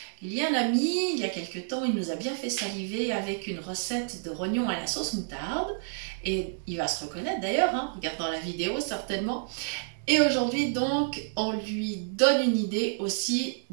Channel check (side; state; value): left; silent; digital silence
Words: Il y a un ami, il y a quelques temps, il nous a bien fait saliver avec une recette de rognons à la sauce moutarde. Et il va se reconnaître d'ailleurs, en regardant la vidéo certainement. Et aujourd'hui donc, on lui donne une idée aussi